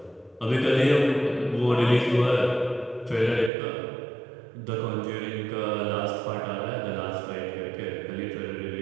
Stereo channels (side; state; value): left; drops out; at 3.5 s